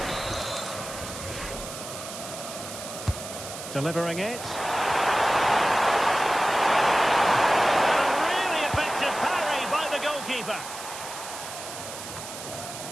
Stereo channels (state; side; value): noise; right; hiss, 10 dB below the sound